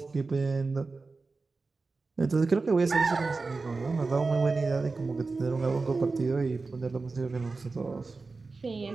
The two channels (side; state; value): left; quieter; 3.9 dB